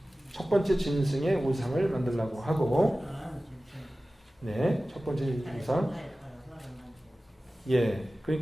짐승의 우상을 만들려고 하고, 첫 번째 우상.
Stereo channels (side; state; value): both; normal; correlation 0.96